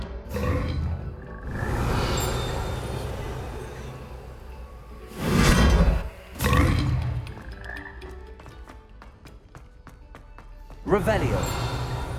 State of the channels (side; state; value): both; identical; correlation 1.00